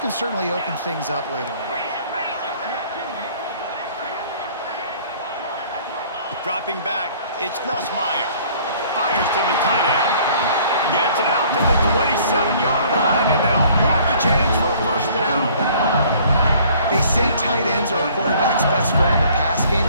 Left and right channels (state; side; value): inverted; both; correlation -0.55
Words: certainly open things up later on. Dropping back, it's Nussmeier. Fires to the tight end. Gets it out to the 27-yard line, and they'll move the chains for a first down. They say tight ends are a quarterback's best friend in the pass game